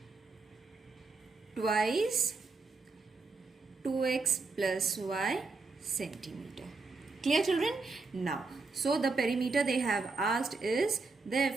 twice 2x plus y centimeter. Clear, children? Now, so the perimeter they have asked is,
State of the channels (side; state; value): left; quieter; 4.0 dB